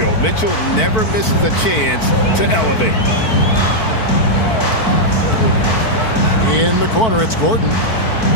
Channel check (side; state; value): right; late; 4.5 ms